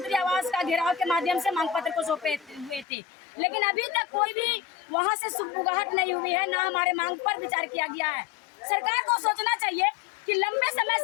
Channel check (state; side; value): drops out; right; at 2.9 s